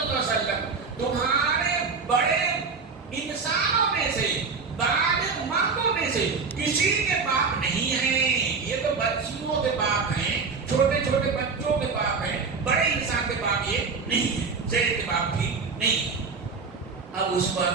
علیہ وسلم تمہارے بڑے انسانوں میں سے، بالغ مردوں میں سے کسی کے باپ نہیں ہیں. یہ تو بچیوں کے باپ ہیں، چھوٹے چھوٹے بچوں کے باپ ہیں، بڑے انسان کے باپ یہ نہیں ہے، زید کے باپ بھی نہیں ہے. اب اس پر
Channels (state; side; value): quieter; left; 4.9 dB